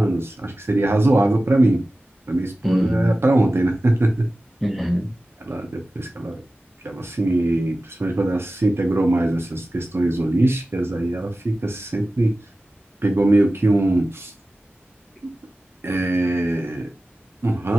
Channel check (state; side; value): normal; both; correlation 0.96